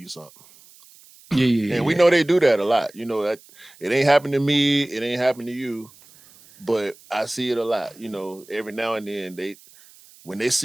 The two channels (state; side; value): noise; right; hiss, 25 dB below the sound